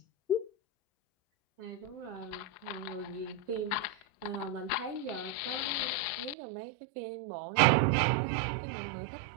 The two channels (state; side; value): drops out; left; at 6.4 s